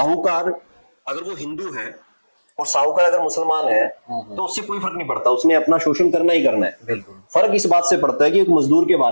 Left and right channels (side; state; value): both; inverted; correlation -1.00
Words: अगर वो हिंदू है और साहूकार अगर मुसलमान है तो उससे कोई फर्क नहीं पड़ता, उसने अपना शोषण करना ही करना है। बिल्कुल। फर्क इस बात से पड़ता है कि एक मजदूर के